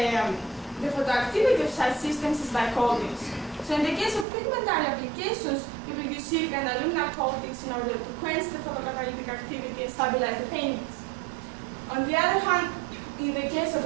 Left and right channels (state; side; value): drops out; left; at 4.2 s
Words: photoactivity of such systems is by coatings. So in the case of pigmentary applications, people use silica and alumina coatings in order to quench the photocatalytic activity and stabilize the paintings. On the other hand, in the case of